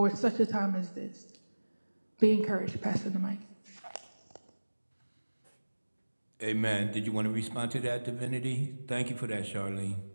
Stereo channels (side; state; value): both; inverted; correlation -1.00